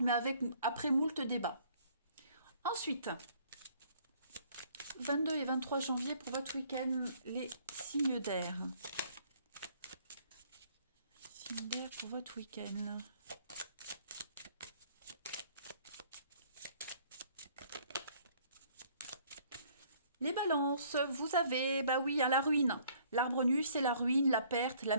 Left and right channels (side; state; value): both; inverted; correlation -0.60